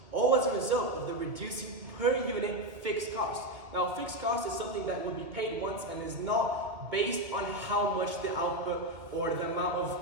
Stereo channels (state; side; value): late; left; 2.2 ms